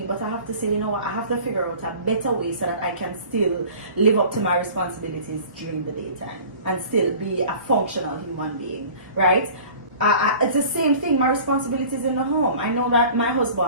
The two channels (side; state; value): both; inverted; correlation -0.45